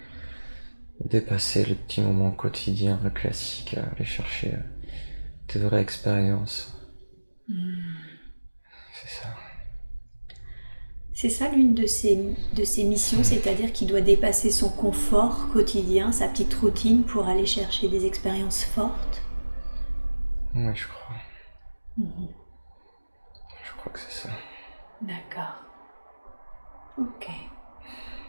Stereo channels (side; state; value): both; inverted; correlation -1.00